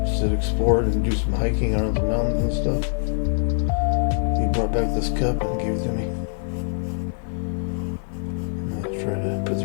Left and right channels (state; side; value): silent; right; digital silence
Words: just to explore it and do some hiking around the mountains and stuff. He brought back this cup and gave it to me. I'm gonna try to